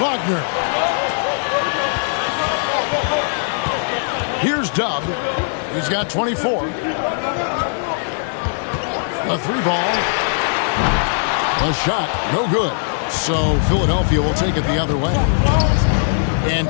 Here's Dub. He's got 24. A 3-ball. A shot. No good. So Philadelphia will take it the other way. And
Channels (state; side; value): silent; right; 66 dB below the other